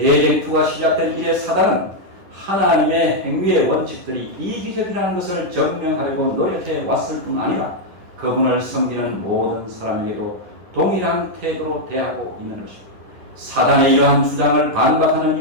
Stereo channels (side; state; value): left; late; 10 ms